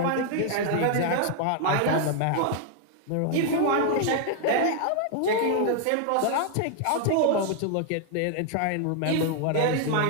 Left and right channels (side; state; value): both; different; correlation 0.00